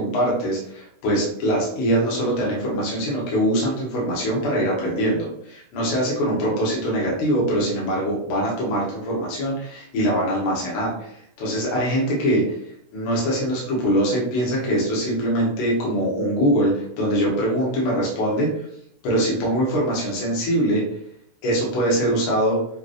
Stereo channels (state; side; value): late; right; 16 ms